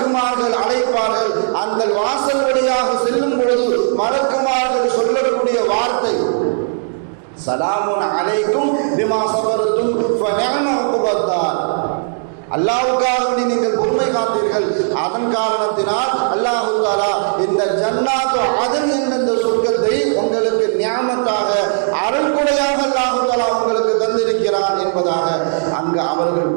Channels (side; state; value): left; silent; digital silence